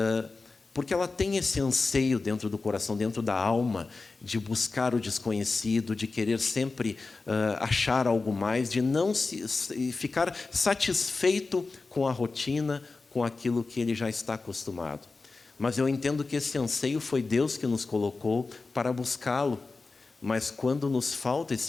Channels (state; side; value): quieter; right; 3.9 dB